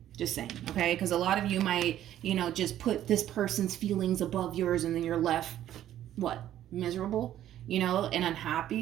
Just saying, okay? Because a lot of you might, you know, just put this person's feelings above yours, and then you're left, what, miserable, you know, and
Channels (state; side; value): quieter; left; 12.0 dB